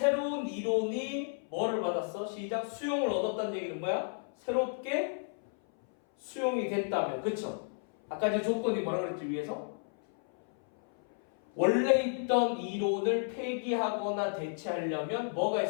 이론이 뭐를 받았어? 시작. 수용을 얻었다는 얘기는 뭐야? 새롭게 수용이 됐다면. 그쵸? 아까 제 조건이 뭐라 그랬지 위에서? 원래 있던 이론을 폐기하거나 대체하려면 뭐가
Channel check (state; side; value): silent; right; 56 dB below the other